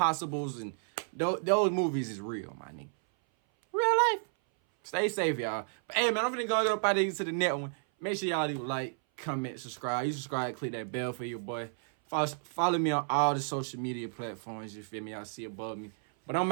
and Those movies is real, my nigga. Real life. Stay safe, y'all. But hey, man, I'm finna go up out of here to the next one. Make sure y'all leave a like, comment, subscribe. You subscribe, click that bell for your boy. Follow me on all the social media platforms. You feel me? Y'all see above me. But I'm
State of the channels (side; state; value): left; silent; 56 dB below the other